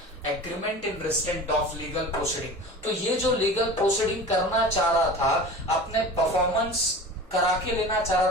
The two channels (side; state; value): both; normal; correlation 0.36